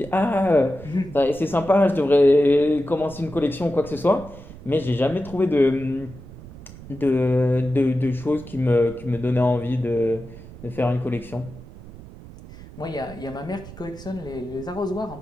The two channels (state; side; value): noise; right; rumble, 17 dB below the sound